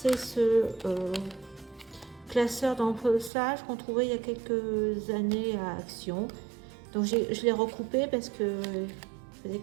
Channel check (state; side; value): drops out; left; at 3.3 s